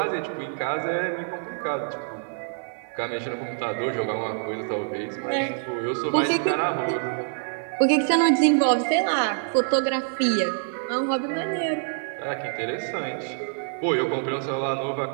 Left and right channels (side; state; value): left; silent; 61 dB below the other